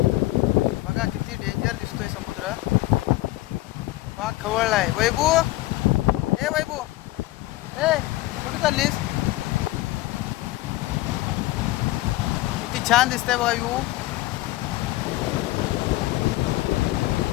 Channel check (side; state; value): right; quieter; 17.9 dB